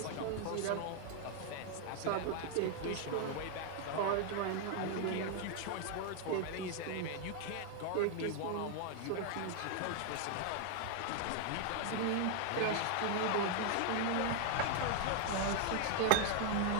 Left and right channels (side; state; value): both; different; correlation 0.00